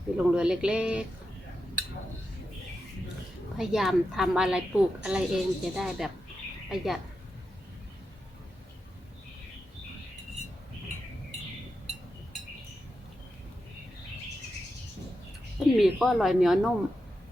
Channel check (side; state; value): both; normal; correlation 0.88